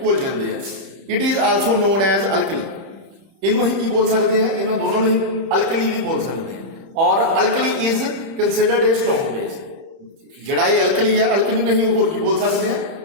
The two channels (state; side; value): late; left; 30 ms